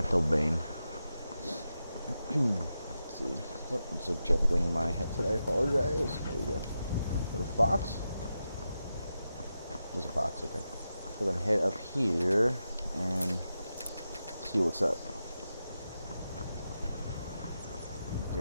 Let's see. Oh, it's adjusting my headset. I apologize. There we go. Is that a fox? There's a fox. Okay. So we're gonna head up here and see what's up.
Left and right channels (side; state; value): both; inverted; correlation -0.89